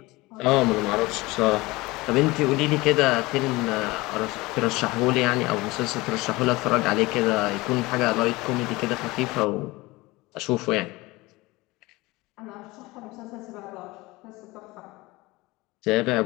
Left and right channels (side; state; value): right; quieter; 21.5 dB